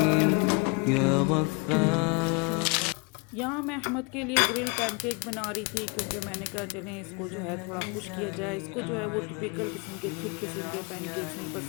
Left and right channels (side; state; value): right; quieter; 30.3 dB